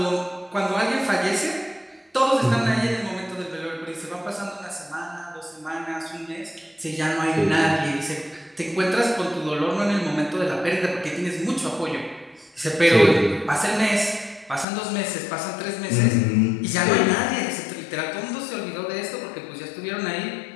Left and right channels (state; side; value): drops out; right; at 14.7 s